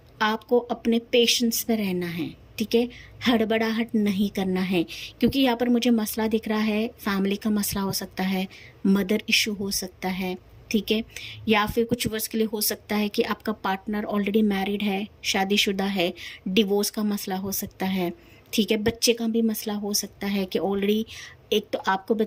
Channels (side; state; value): both; identical; correlation 1.00